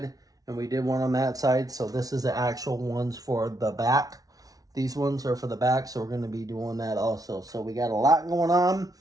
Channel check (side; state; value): left; late; 0.18 ms